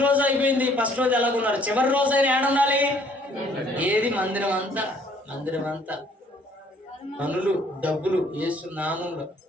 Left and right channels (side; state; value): both; normal; correlation 0.61